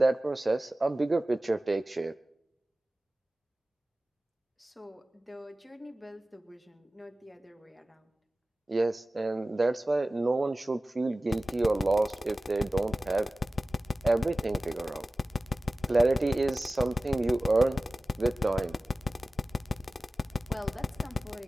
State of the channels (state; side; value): normal; both; correlation 0.97